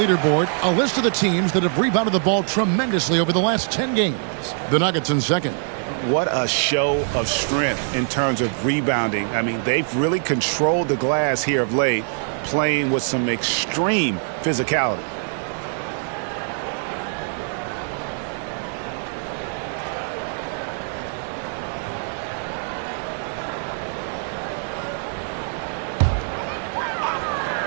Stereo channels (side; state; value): left; silent; 63 dB below the other